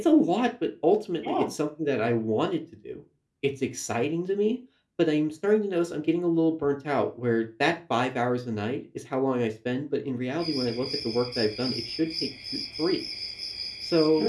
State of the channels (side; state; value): both; identical; correlation 1.00